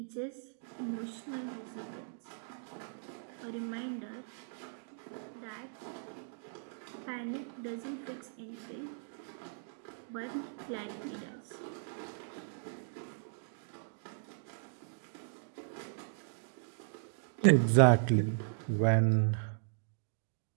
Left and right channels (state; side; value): silent; left; digital silence